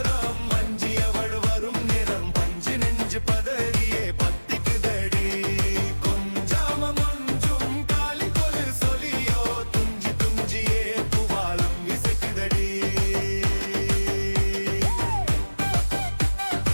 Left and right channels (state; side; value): inverted; both; correlation -1.00